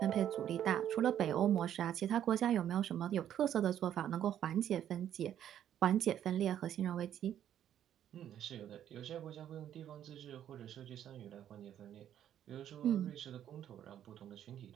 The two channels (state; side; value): quieter; left; 10.5 dB